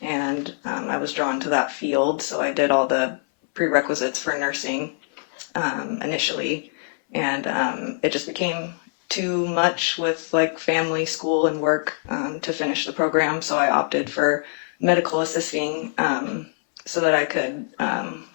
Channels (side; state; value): right; silent; 63 dB below the other